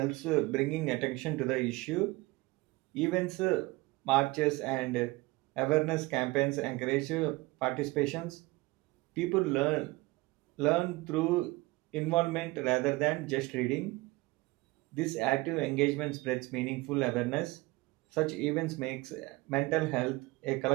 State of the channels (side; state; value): left; quieter; 22.0 dB